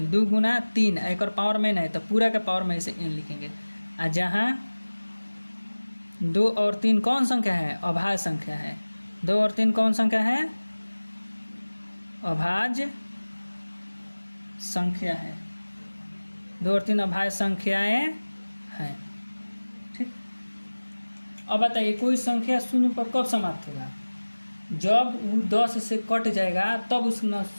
2 गुना 3, एक और पावर में है तो पूरा के पावर में से n लिखेंगे। आ जहाँ 2 और 3 कौन संख्या है, अभाज्य संख्या है। 2 और 3 कौन संख्या है, अभाज्य संख्या है। 2 और 3 अभाज्य संख्याएं हैं। ठीक, अब बताइए कोई संख्या शून्य पर कब समाप्त होगा, जब वो 10 से कट जाएगा तब उस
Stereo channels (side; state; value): both; inverted; correlation -1.00